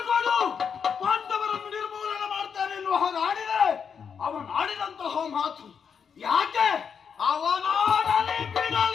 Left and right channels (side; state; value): right; quieter; 6.8 dB